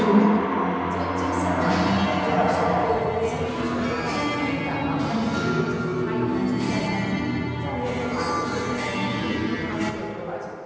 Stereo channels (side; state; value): both; identical; correlation 1.00